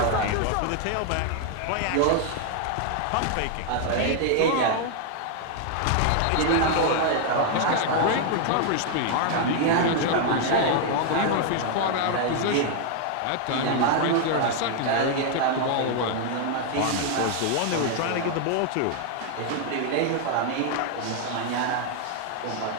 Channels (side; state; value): both; different; correlation 0.00